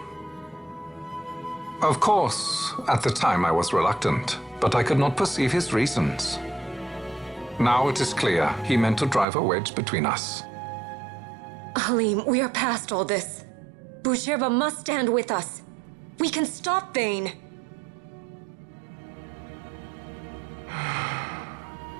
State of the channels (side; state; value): left; drops out; at 9.2 s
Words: Of course, at the time I was reluctant, but I could not perceive his reasons. Now it is clear he meant to drive a wedge between us. Halim, we are past all this. Boucherba must stand with us. We can stop Vane.